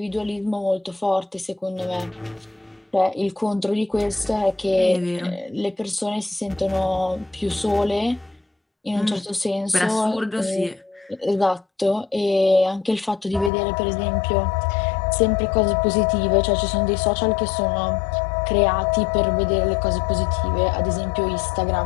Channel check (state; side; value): drops out; right; at 13.5 s